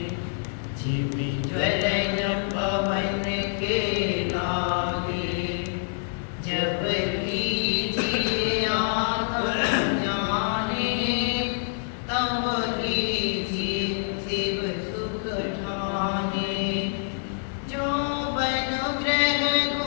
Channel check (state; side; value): silent; right; 61 dB below the other